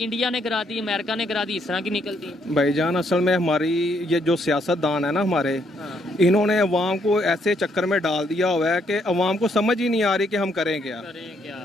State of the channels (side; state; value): both; normal; correlation 0.72